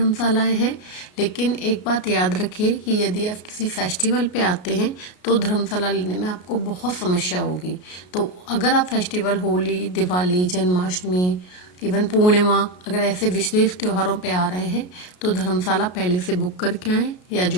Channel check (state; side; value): late; right; 33 ms